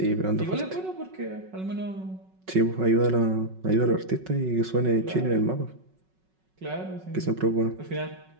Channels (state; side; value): late; left; 5.4 ms